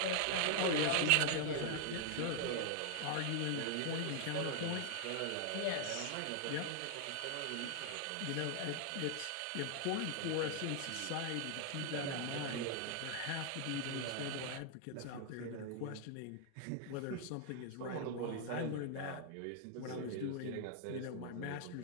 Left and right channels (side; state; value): both; different; correlation 0.00